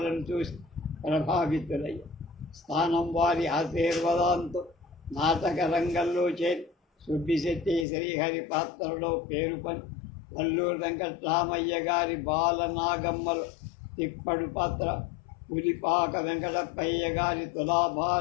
చూసి ప్రభావితులయ్యారు. స్థానం వారి ఆశీర్వాదంతో నాటక రంగంలో చేరి సుబ్బిశెట్టి శ్రీహరి పాత్రలో పేరు పని వల్లూరు వెంకట్రామయ్య గారి బాలనాగమ్మలో తిప్పడు పాత్ర, పులిపాక వెంకటప్పయ్య గారి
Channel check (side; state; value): right; drops out; at 7.9 s